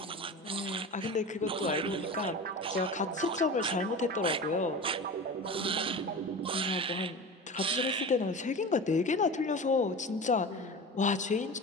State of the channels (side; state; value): both; normal; correlation 0.31